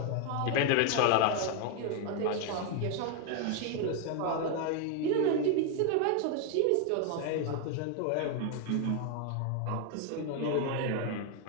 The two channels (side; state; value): both; different; correlation 0.00